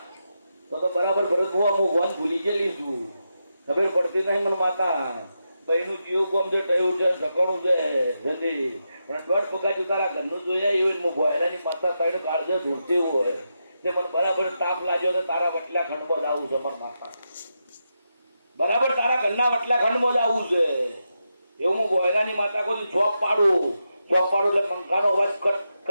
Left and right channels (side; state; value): both; inverted; correlation -0.86